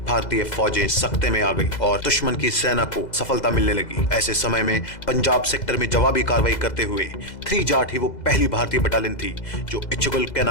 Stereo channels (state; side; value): late; right; 2.0 ms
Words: भारतीय फौजें सख्ते में आ गई और दुश्मन की सेना को सफलता मिलने लगी। ऐसे समय में पंजाब सेक्टर में जवाबी कार्रवाई करते हुए 3 जाट ही वो पहली भारतीय बटालियन थी जो इच्छुगल